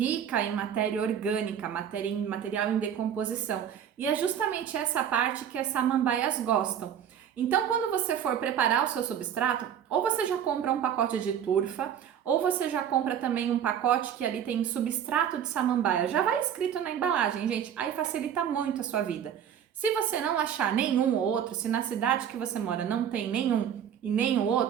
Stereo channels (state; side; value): quieter; left; 9.1 dB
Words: em matéria orgânica, material em decomposição. E é justamente essa parte que as samambaias gostam. Então, quando você for preparar o seu substrato, ou você já compra um pacote de turfa, ou você já compra também um pacote que ali tem substrato de samambaia. Já vai escrito na embalagem, gente, aí facilita muito a sua vida. Se você não achar nenhum ou outro, se na cidade que você mora não tem nenhum e nem o